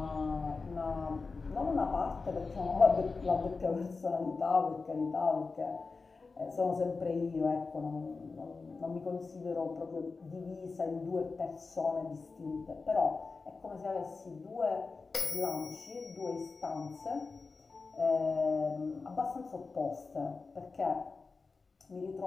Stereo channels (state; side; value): quieter; right; 4.2 dB